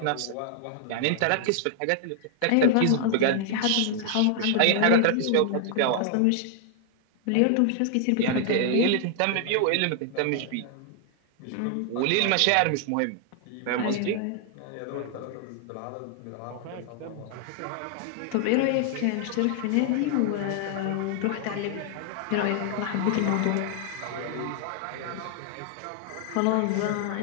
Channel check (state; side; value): different; both; correlation 0.00